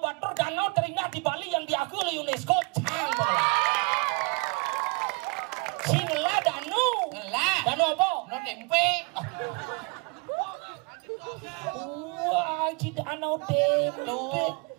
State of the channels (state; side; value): quieter; left; 30.8 dB